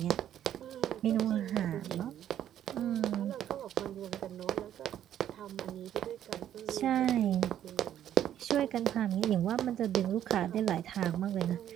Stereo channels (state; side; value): quieter; left; 10.9 dB